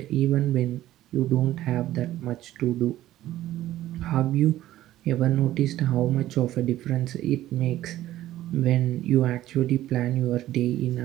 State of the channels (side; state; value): left; quieter; 14.2 dB